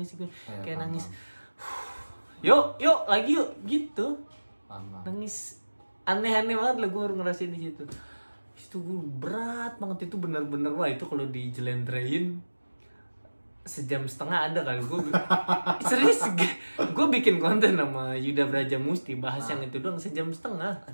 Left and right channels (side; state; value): both; inverted; correlation -1.00